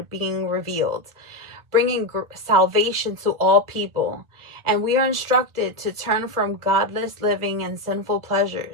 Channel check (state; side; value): late; left; 1.4 ms